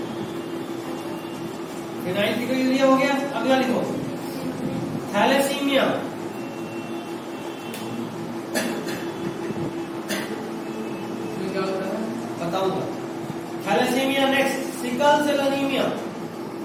फिनाइल कीटोयूरिया हो गया। अगला लिखो थैलेसीमिया, इसमें क्या होता है? बताऊंगा। Thalassaemia next, sickle cell anaemia,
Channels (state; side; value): identical; both; correlation 1.00